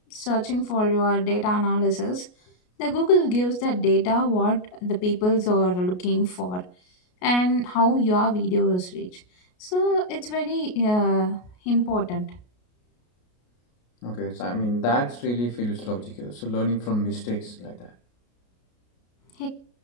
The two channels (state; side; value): late; right; 33 ms